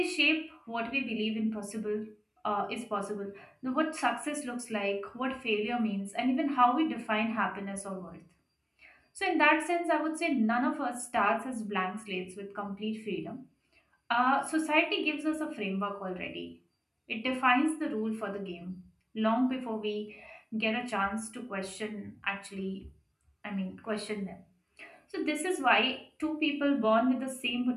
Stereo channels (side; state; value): both; identical; correlation 1.00